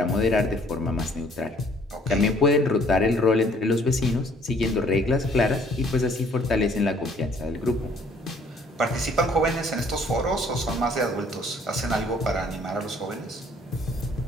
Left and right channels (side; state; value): both; normal; correlation 0.60